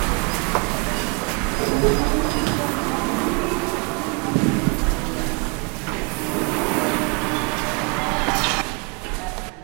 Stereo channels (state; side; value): quieter; left; 31.8 dB